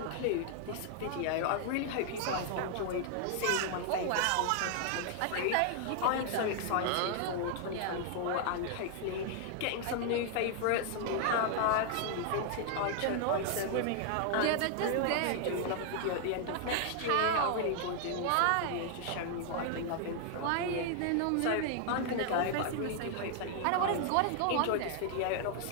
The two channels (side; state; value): both; different; correlation 0.00